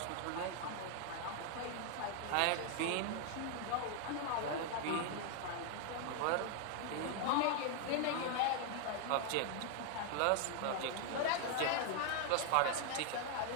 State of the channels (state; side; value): different; both; correlation 0.00